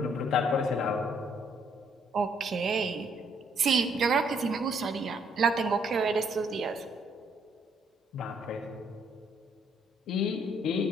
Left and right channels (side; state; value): both; normal; correlation 0.68